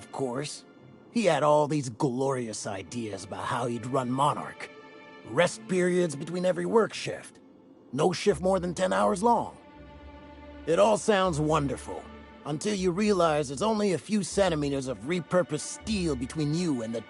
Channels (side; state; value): both; identical; correlation 1.00